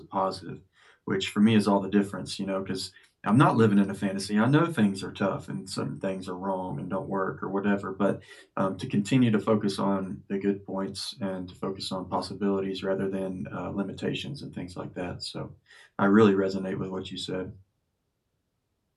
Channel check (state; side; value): identical; both; correlation 1.00